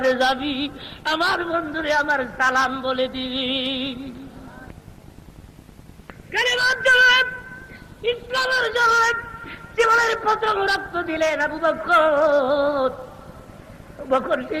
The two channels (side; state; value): both; identical; correlation 1.00